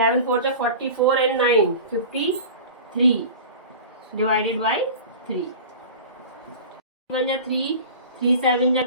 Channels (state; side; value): inverted; both; correlation -0.36